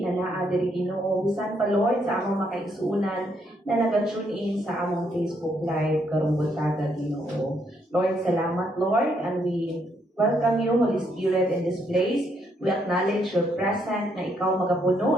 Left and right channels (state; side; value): normal; both; correlation 0.74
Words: na naa diri Ginoo, bisan pa Lord sa among makaigsuunan na naga-tune in sa among Facebook Live karong buntaga, Ginoo. Lord, salamat, Lord, and we welcome you, Holy Spirit, in this place. We acknowledge your presence na ikaw magapuno